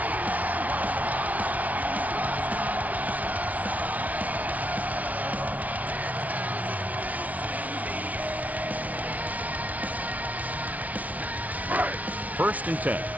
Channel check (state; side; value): late; left; 0.071 ms